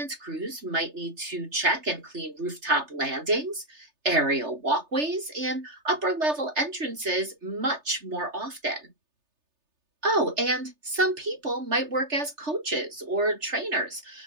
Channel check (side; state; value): left; late; 3.3 ms